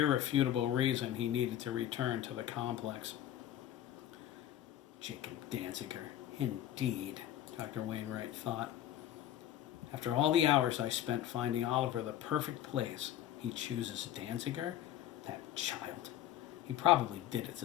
reason he needed to return to the complex. Jacob Danziger, indeed, Dr. Wainwright thought. After all the hours I spent finding Oliver the perfect place, he chooses Danziger? That child. He probably did it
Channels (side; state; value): right; quieter; 12.1 dB